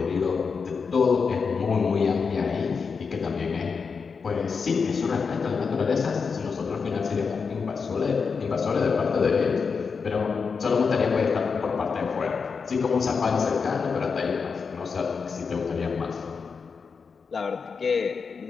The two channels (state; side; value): quieter; right; 5.4 dB